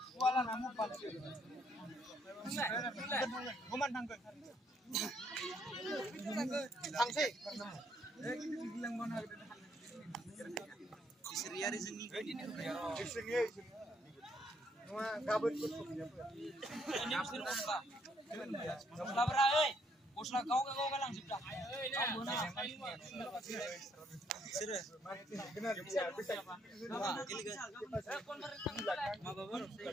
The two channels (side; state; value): both; normal; correlation 0.70